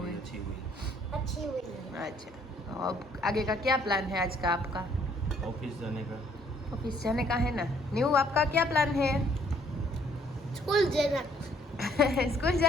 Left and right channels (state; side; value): normal; both; correlation 0.64